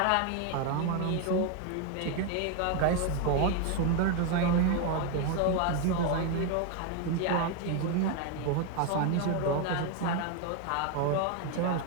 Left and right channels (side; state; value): both; different; correlation 0.01